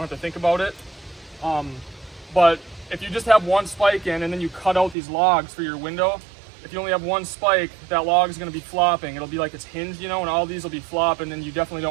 have to think about it. But if you just have 1 spike in and then you cut out these logs for your window, if you only have 1 spike, that log is going to be flopping. It'll be like it's hinged, you know, and all these will be flopping, and you definitely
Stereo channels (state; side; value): drops out; left; at 5.0 s